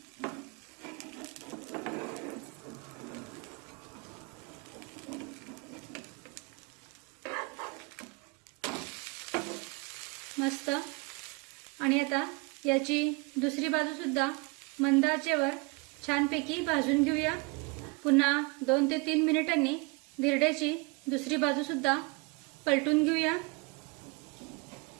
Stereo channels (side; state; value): left; quieter; 29.0 dB